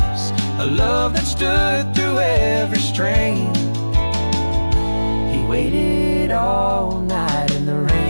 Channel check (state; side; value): inverted; both; correlation -1.00